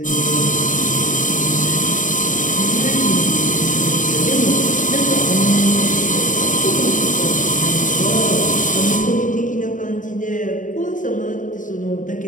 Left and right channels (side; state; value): right; late; 0.38 ms